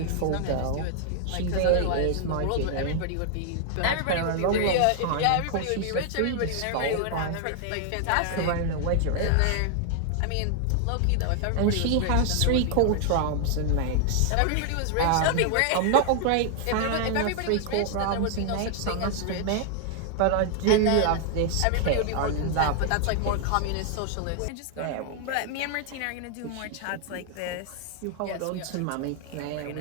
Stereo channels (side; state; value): both; different; correlation 0.00